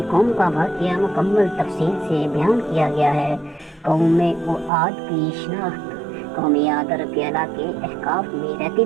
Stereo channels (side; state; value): left; drops out; at 4.7 s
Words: قوم کا واقعہ مکمل تفصیل سے بیان کیا گیا ہے۔ قوم عاد کی شناخت: قوم عاد عرب کے علاقے احقاف میں رہتی